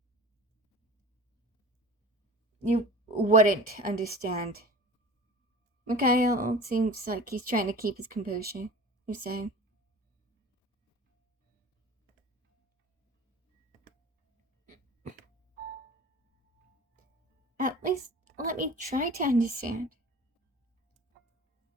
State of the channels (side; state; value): both; normal; correlation 0.40